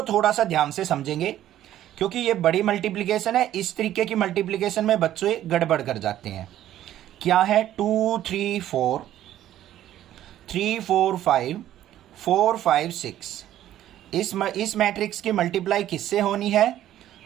थोड़ा सा ध्यान से समझेंगे क्योंकि ये बड़ी मल्टीप्लिकेशन है। इस तरीके की मल्टीप्लिकेशन में बच्चे गड़बड़ कर जाते हैं। क्या है? 2 3 4 3 4 5 4 5 6। इस मैट्रिक्स की मल्टीप्लाई किससे होनी है?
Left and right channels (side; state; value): left; quieter; 12.5 dB